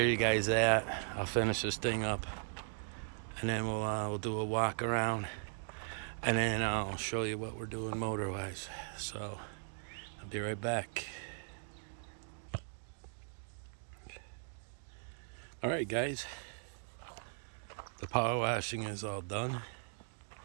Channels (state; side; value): silent; left; digital silence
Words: you guys that. I'll finish this thing up, and then we'll do a walk around, and then I'll show you what we're doing motor-wise. So I'll be right back. All right, guys. The power washing is all done.